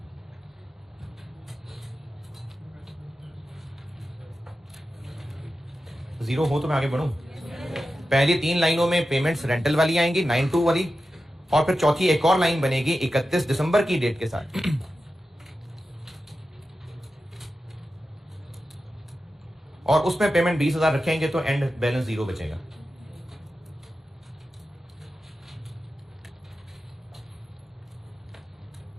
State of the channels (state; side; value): normal; both; correlation 0.92